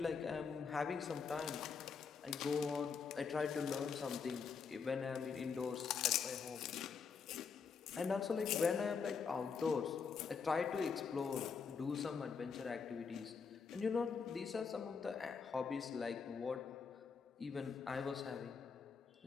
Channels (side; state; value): right; quieter; 5.8 dB